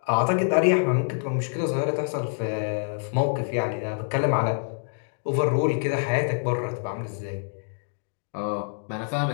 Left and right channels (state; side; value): silent; right; digital silence